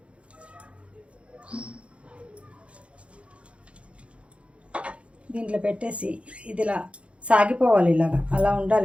దీంట్లో పెట్టేసి ఇది ఇలా సాగిపోవాలి, ఇలాగా అలా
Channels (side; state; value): left; late; 0.061 ms